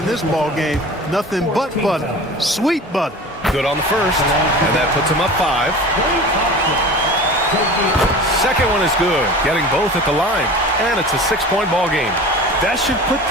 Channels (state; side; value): normal; both; correlation 0.37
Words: this ball game. Nothing but butter. Sweet butter. Good on the first, and that puts him up 5. Second one is good, getting both at the line, and it's a 6-point ball game. That should put